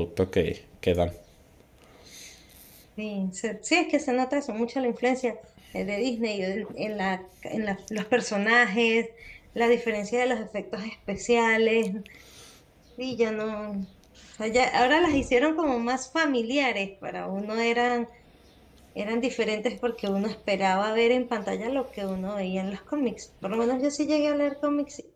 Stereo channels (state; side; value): identical; both; correlation 1.00